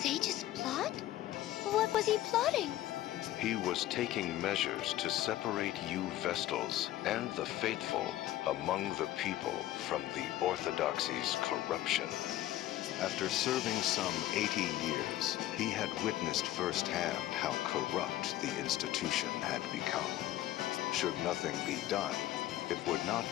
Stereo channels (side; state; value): right; quieter; 14.3 dB